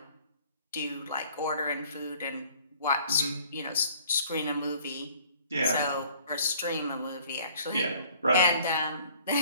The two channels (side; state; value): both; inverted; correlation -0.55